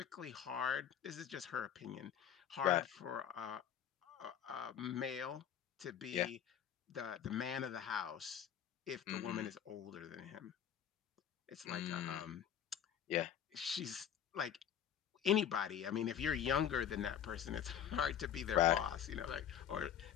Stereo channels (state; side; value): quieter; right; 9.3 dB